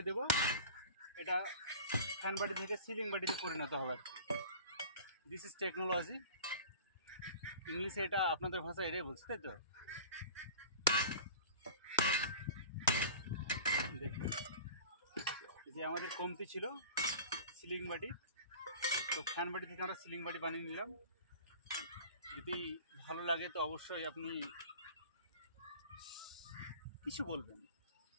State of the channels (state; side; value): inverted; both; correlation -0.40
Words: দেবো। এটা ফ্যান বাড়ি থেকে সিলিং বাড়িতে পরিণত হবে। দিস ইজ টেকনোলজি, ইংলিশে এটা আপনাদের ভাষা এটাই বলছে, তাই তো? দেখুন, যে আমাদের কমতি ছিল সিলিং বাড়ি, তো ফ্যান বাড়ি থেকে আমরা সিলিং বাড়ি বানিয়ে নিলাম। যদি ভালো লাগে তো অবশ্যই আপনি কিছু বলবেন,